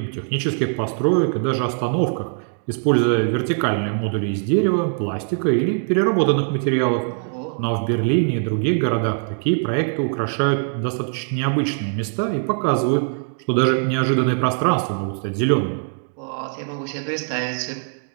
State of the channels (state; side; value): silent; left; 57 dB below the other